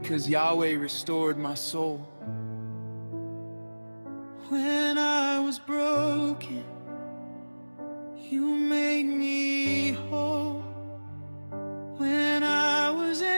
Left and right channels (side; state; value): both; inverted; correlation -1.00